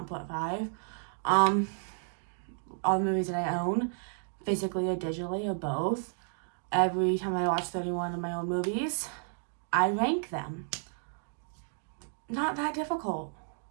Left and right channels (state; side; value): silent; left; digital silence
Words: part 5. All the movies that I own, physically or digitally or both. Every time I watch 31 of my own movies, I rank them. Not that difficult.